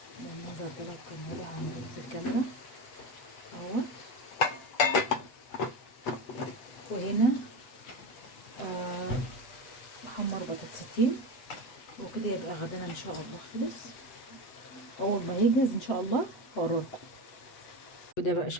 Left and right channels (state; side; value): late; right; 8.1 ms